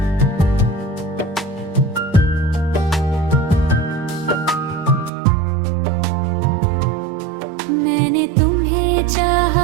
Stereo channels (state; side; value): drops out; left; at 5.1 s